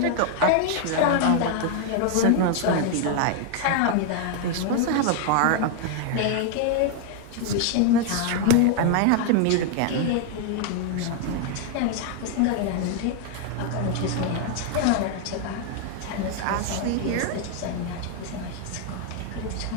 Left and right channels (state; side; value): different; both; correlation 0.00